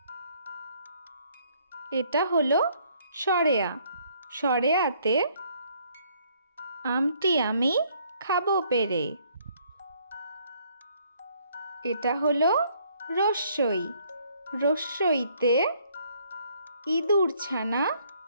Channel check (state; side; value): inverted; both; correlation -0.65